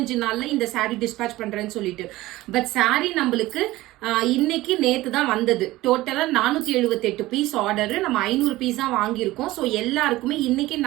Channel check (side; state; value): left; quieter; 17.8 dB